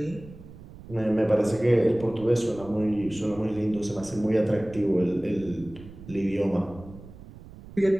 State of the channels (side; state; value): right; noise; rumble, 17 dB below the sound